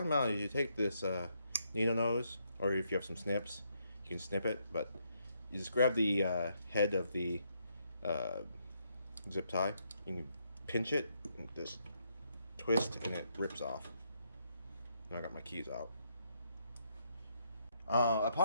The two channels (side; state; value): both; inverted; correlation -0.76